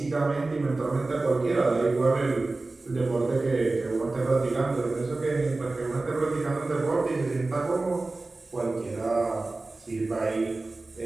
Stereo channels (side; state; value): left; quieter; 3.3 dB